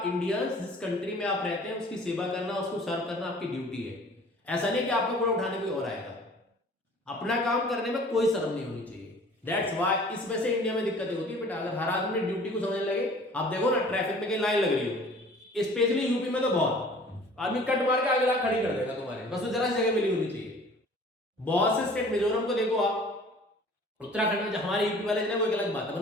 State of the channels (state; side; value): normal; both; correlation 0.49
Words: इंडियंस, जिस कंट्री में आप रहते हैं उसकी सेवा करना, उसको सर्व करना आपकी ड्यूटी है। ऐसा नहीं कि आपका कूड़ा उठाने कोई और आएगा। अपना काम करने में कोई शर्म नहीं होनी चाहिए। दैट्स व्हाई इस वजह से इंडिया में दिक्कतें होती है बेटा। अगर हर आदमी ड्यूटी को समझने लगे, आप देखो ना ट्रैफिक में कहीं लाइन लग रही हो, स्पेशली यूपी में तो बहुत आदमी कट मार के आगे ला खड़ी कर देगा तुम्हारे, बस वो जरा सी जगह मिली होनी चाहिए। बहुत से स्टेट, मिजोरम को देखो आप, उत्तराखंड में, हमारे यूपी वाले वो एक अलग बात है,